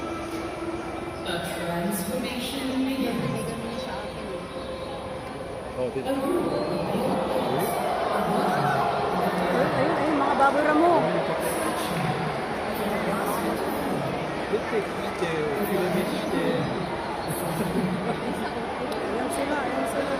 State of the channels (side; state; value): both; identical; correlation 1.00